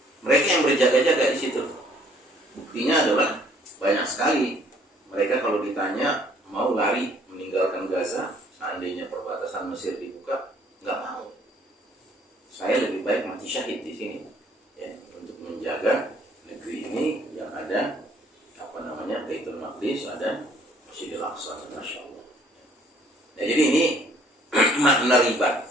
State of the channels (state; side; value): normal; both; correlation 0.61